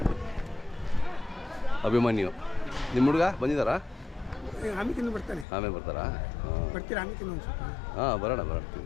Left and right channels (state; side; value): drops out; right; at 5.5 s